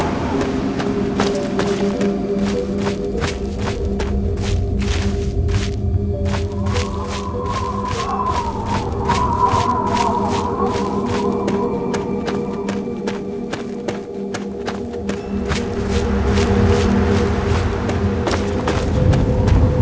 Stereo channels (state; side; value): identical; both; correlation 1.00